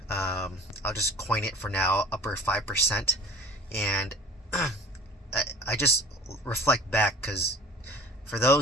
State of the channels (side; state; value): both; normal; correlation 0.43